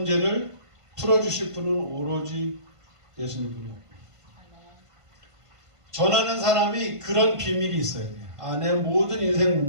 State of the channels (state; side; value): late; left; 1.5 ms